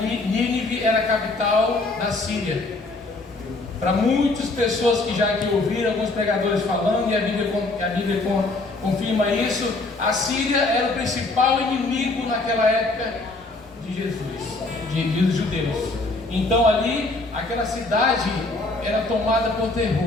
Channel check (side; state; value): right; quieter; 3.2 dB